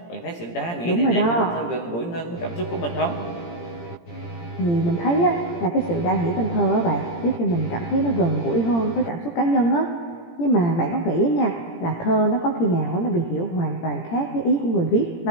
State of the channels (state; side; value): late; right; 17 ms